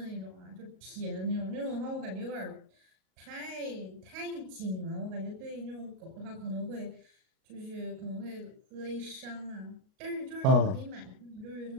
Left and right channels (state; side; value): late; left; 38 ms